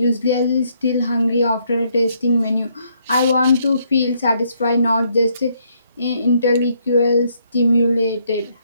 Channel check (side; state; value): both; inverted; correlation -0.72